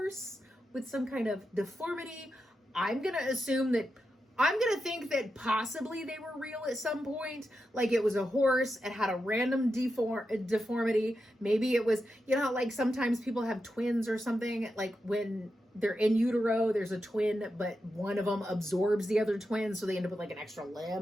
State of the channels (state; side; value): normal; both; correlation 0.88